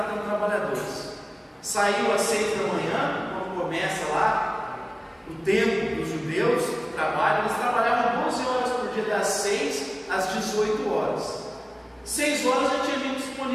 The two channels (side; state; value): both; identical; correlation 1.00